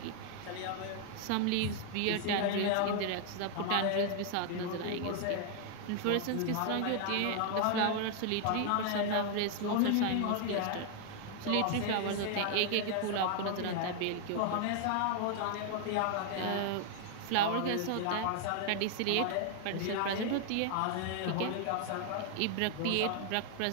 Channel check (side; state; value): both; different; correlation 0.00